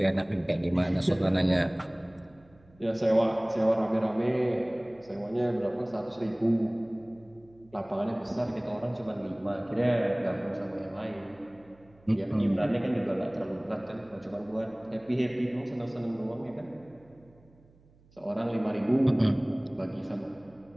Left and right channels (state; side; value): noise; right; hum, 29 dB below the sound